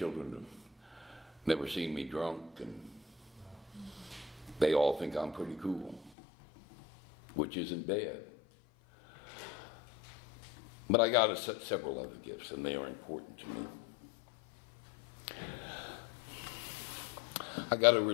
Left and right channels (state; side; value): drops out; right; at 6.1 s